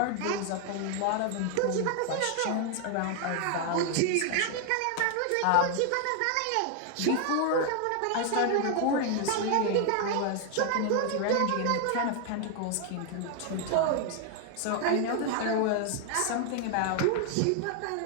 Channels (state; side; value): different; both; correlation 0.00